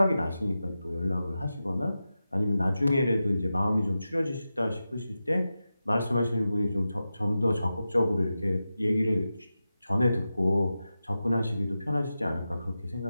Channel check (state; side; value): inverted; both; correlation -0.92